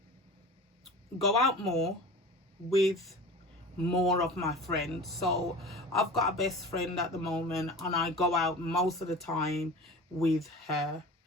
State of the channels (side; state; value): both; normal; correlation 0.36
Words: go out more with more of my friends. So I've got a best friend at the moment and I go out most of the time with her.